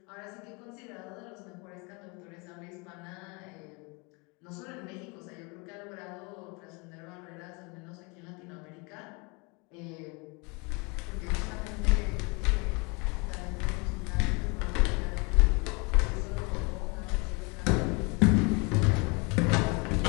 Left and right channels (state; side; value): quieter; right; 29.9 dB